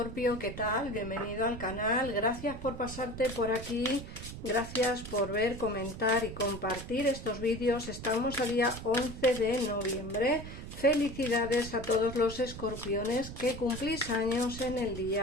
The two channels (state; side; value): noise; right; rumble, 11 dB below the sound